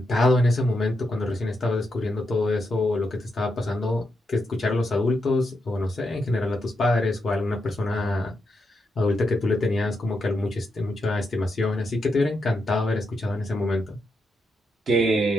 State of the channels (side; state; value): both; normal; correlation 0.83